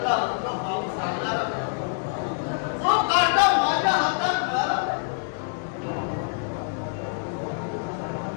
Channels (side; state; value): right; silent; 61 dB below the other